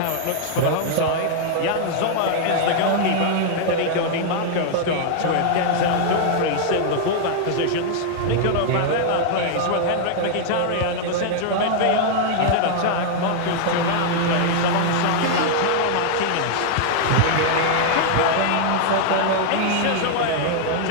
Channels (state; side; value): different; both; correlation 0.00